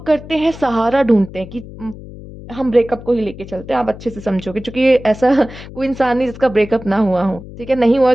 करते हैं सहारा ढूँढते हैं कि हम ब्रेकअप को ही लेके चलते हैं, आप अच्छे से समझोगे क्योंकि ये ऐसा कोई इंसान नहीं जिसका ब्रेकअप ना हुआ हो, ठीक है? नहीं हुआ है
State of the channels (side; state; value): left; noise; hum, 15 dB below the sound